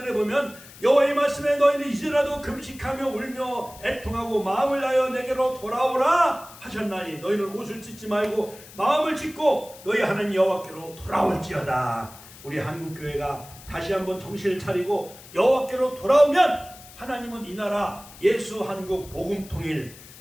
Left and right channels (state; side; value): noise; left; hiss, 19 dB below the sound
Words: 보면 여호와의 말씀에 너희는 이제라도 금식하며 울며 애통하고 마음을 다하여 내게로 돌아오라 하셨나니 너희는 옷을 찢지 말고 마음을 찢고 너희 하나님 여호와께로 돌아올지어다. 우리 한국교회가 다시 한번 정신을 차리고 여호와께로 돌아오면 하나님은 이 나라 예수 한국 복음 통일